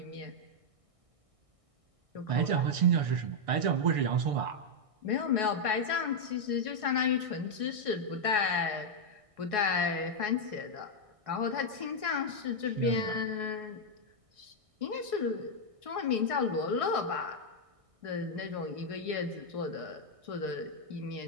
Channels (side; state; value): left; late; 1.6 ms